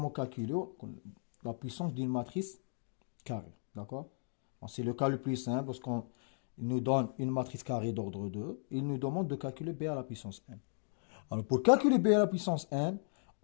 calculer la puissance d'une matrice carrée. D'accord? C'est le cas le plus simple parce qu'il nous donne une matrice carrée d'ordre 2. Il nous demande de calculer b à la puissance n. Alors, pour calculer b à la puissance n,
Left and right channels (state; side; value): silent; right; digital silence